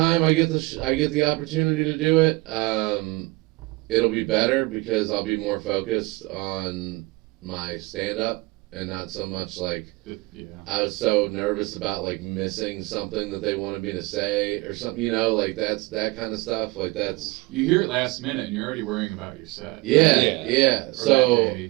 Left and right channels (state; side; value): quieter; left; 23.2 dB